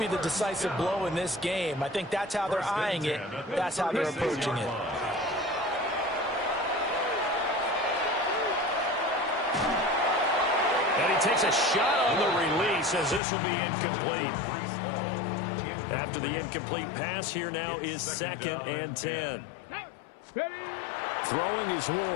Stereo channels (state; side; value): drops out; right; at 13.2 s